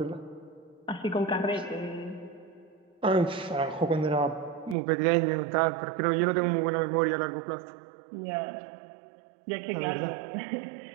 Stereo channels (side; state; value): left; drops out; at 4.8 s